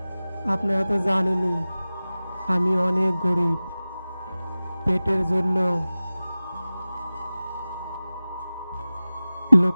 আপনারা তো জানেনই আমি অনেক গরিব, পেটের জন্য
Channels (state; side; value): inverted; both; correlation -0.97